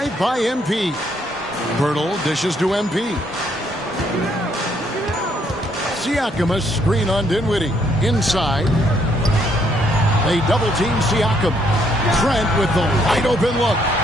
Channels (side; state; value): both; normal; correlation 0.70